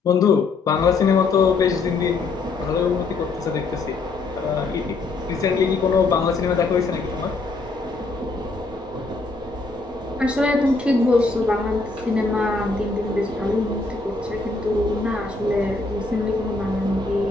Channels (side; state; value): right; quieter; 3.8 dB